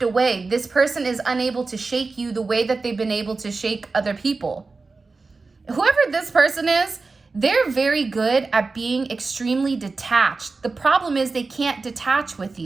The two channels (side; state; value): left; quieter; 4.0 dB